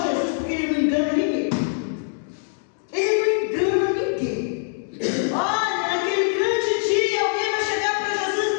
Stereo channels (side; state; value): right; silent; digital silence